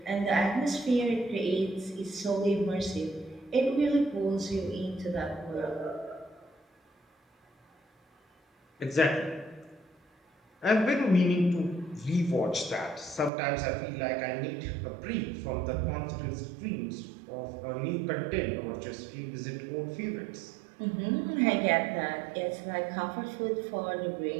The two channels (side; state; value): left; drops out; at 13.3 s